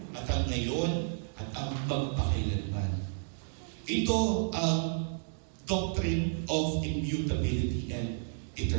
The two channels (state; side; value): silent; left; digital silence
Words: at ang ngayon, at ang magpakailanman. Ito ang doctrine of immutability and